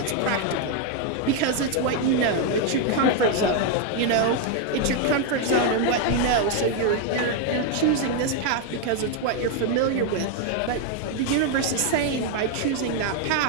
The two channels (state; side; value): different; both; correlation 0.01